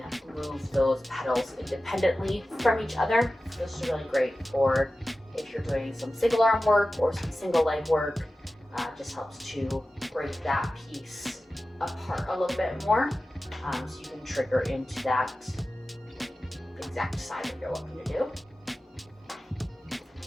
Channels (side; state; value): both; normal; correlation 0.95